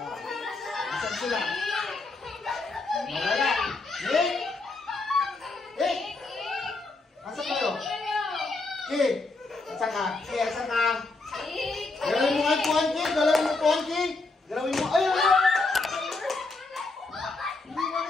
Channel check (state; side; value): quieter; right; 3.4 dB